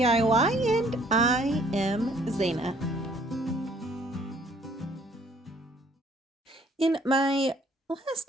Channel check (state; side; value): normal; both; correlation 0.61